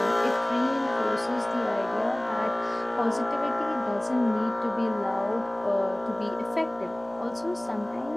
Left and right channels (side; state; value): right; noise; hum, 25 dB below the sound